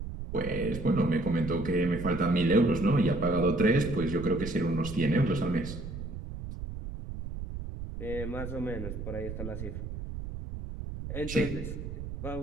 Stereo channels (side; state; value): right; noise; rumble, 8 dB below the sound